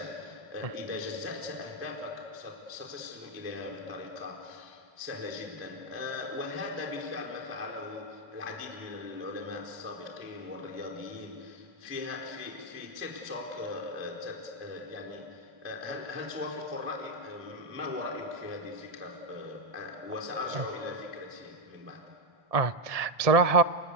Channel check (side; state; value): left; late; 1.7 ms